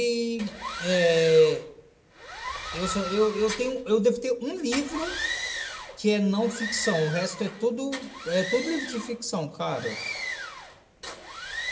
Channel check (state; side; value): identical; both; correlation 1.00